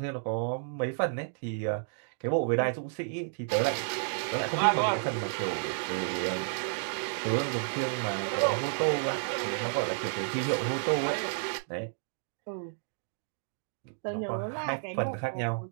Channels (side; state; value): left; silent; digital silence